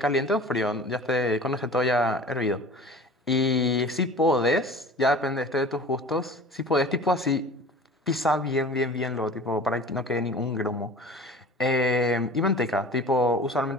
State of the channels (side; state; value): both; normal; correlation 0.41